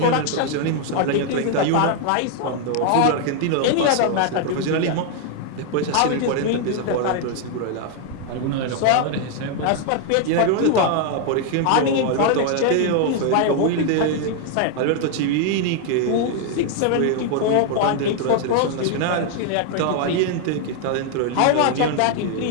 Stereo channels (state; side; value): different; both; correlation 0.00